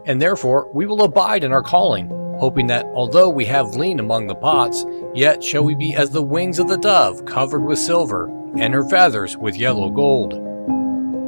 and therefore we will abide in our calling, hoping that although we have lien among the pots, yet shall we be as the wings of the dove covered with silver, and her feathers with yellow gold.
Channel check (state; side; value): inverted; both; correlation -1.00